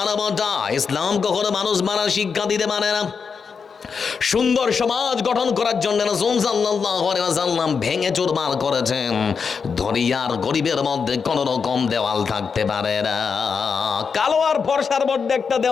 ইসলাম কখনো মানুষ মারার শিক্ষা দিতে পারে না। সুন্দর সমাজ গঠন করার জন্য রাসূল সাল্লাল্লাহু আলাইহি ওয়াসাল্লাম ভেঙে চুরমার করেছেন। ধনী আর গরিবের মধ্যে কোন রকম দেওয়াল থাকতে পারে না। কালো আর ফর্সার মধ্যে একটা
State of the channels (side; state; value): right; quieter; 5.8 dB